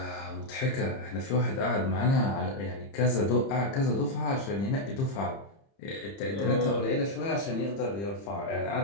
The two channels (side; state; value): right; late; 30 ms